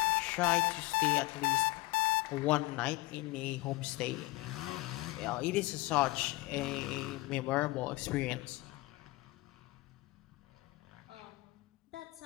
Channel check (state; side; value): quieter; right; 21.2 dB